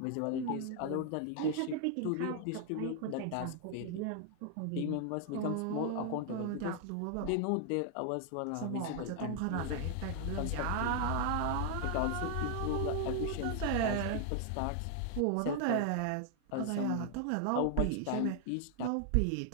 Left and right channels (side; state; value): both; different; correlation 0.00